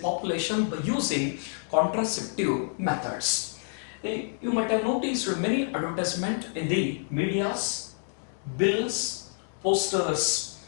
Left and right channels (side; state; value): right; silent; digital silence